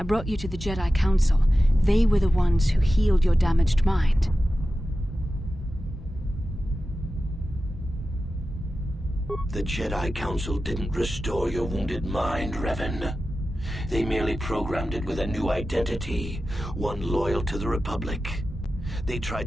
brought you to the Jedi Council. They were the ones who healed your damaged mind. The Jedi Council didn't restore your wounded mind, Revan. They merely programmed it with a new identity, one loyal to the Republic. They tried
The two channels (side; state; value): both; normal; correlation 0.93